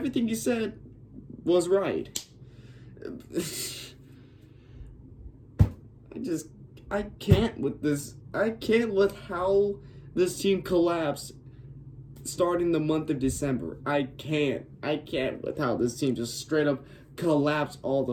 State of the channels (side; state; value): both; identical; correlation 1.00